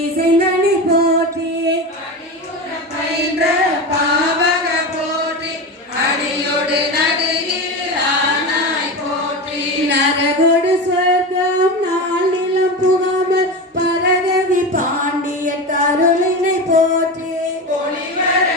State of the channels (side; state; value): both; normal; correlation 0.23